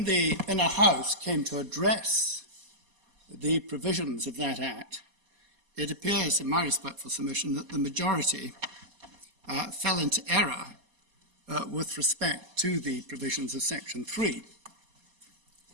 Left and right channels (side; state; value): left; late; 4.2 ms